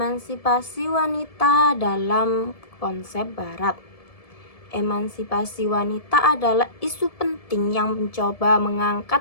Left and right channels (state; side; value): late; right; 1.7 ms